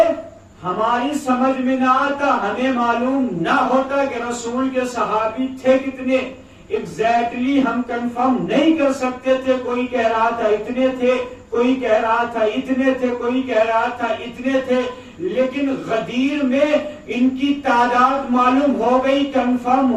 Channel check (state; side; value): identical; both; correlation 1.00